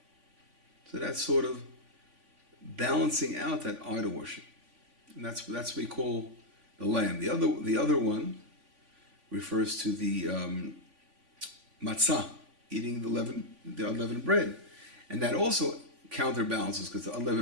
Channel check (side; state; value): left; late; 3.5 ms